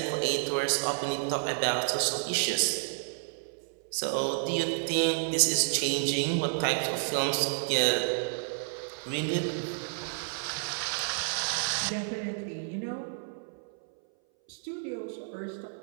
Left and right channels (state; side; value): silent; left; 57 dB below the other